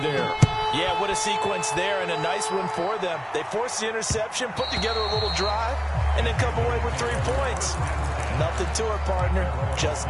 Yeah, what a sequence there, and a nice one for them. They forced the interception, put together a little drive, and then come away with 3 points. Nothing to it, partner. Just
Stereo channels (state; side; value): identical; both; correlation 1.00